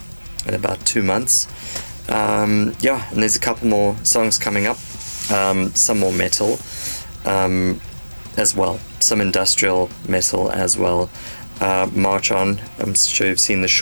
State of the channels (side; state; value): both; inverted; correlation -1.00